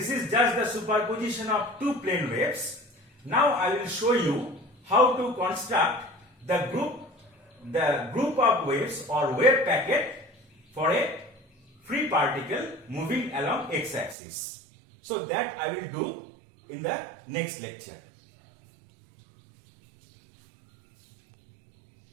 is just the superposition of two plane waves. Now I will show you how to construct the group of waves or wave packet for a free particle moving along x-axis. So that I will do in the next lecture.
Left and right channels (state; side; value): drops out; left; at 14.2 s